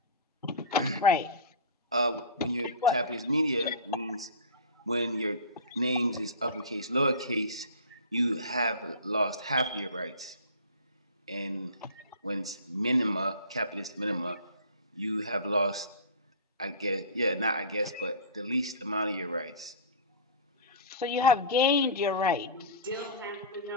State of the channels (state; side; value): inverted; both; correlation -0.34